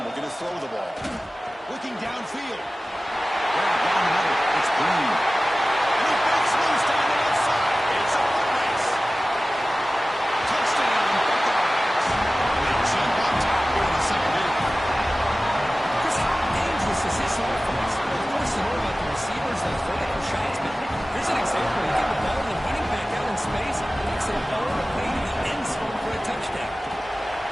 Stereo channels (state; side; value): normal; both; correlation 0.97